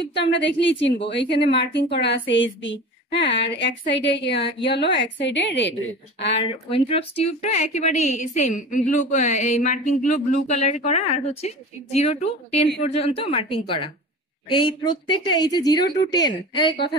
তো আমরা দেখলেই চিনবো, এইখানে মার্কিং করা আছে এসবি। হ্যাঁ, আর এক সাইডে ইয়েলো, এক সাইডে রেড। আর উইন্ট্রপস টিউবটা একেবারে সেম, ব্লু, এই মার্কিং গুলো ব্লু কালার করা, আর হচ্ছে 0 to 10 পর্যন্ত মার্কিং করা। এই প্রত্যেকটা এই যে 0 to 10, এই কথা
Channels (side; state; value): both; normal; correlation 0.35